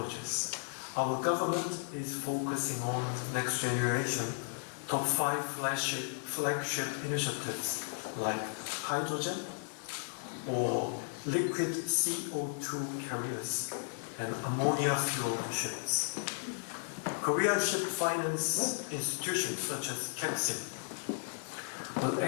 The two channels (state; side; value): silent; right; 55 dB below the other